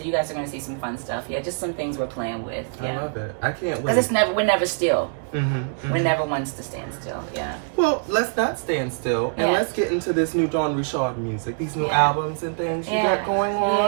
you guys are going to see some fun stuff. Yeah, just some things we're playing with. Yeah. I love it. I can't wait. Because we're never still. Mm-hmm. We're never ones to stand still. Yeah. Well, let's not stand still, and let's get into this new Dawn Richard music, these new albums and things you got going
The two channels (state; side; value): silent; left; digital silence